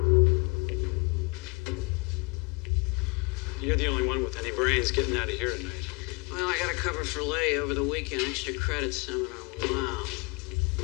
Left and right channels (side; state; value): right; quieter; 29.6 dB